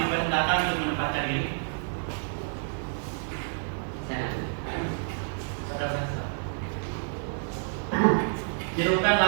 untuk menempatkan diri. Tirukan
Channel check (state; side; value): silent; left; digital silence